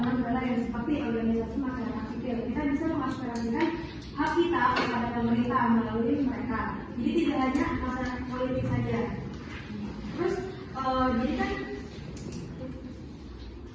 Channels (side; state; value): both; identical; correlation 1.00